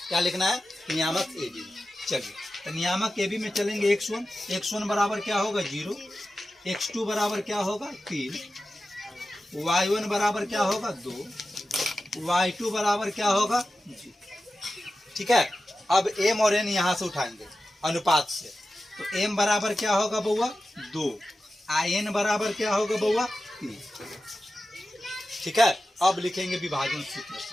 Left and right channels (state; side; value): normal; both; correlation 0.93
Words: क्या लिखना है, नियामक ए बी। चलिए तो नियामक ए बी में चलेंगे x1, x1 बराबर क्या होगा 0, x2 बराबर क्या होगा 3, y1 बराबर क्या होगा 2, y2 बराबर क्या होगा 0। ठीक है, अब m और n यहाँ से उठाएंगे अनुपात से, तो m बराबर क्या होगा बउआ 2, n बराबर क्या होगा बउआ 3। ठीक है, अब लिखेंगे विभाजन सूत्र